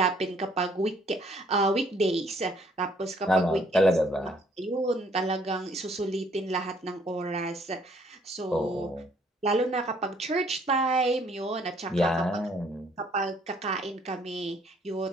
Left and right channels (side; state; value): both; normal; correlation 0.63